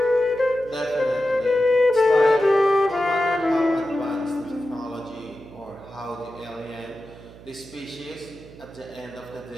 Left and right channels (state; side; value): noise; right; hum, 19 dB below the sound